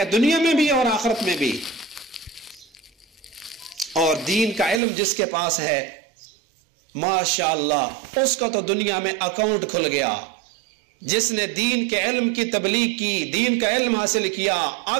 دنیا میں بھی اور آخرت میں بھی. اور دین کا علم جس کے پاس ہے ماشاءاللہ اس کا تو دنیا میں اکاؤنٹ کھل گیا. جس نے دین کے علم کی تبلیغ کی, دین کا علم حاصل کیا,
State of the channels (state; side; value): drops out; left; at 4.8 s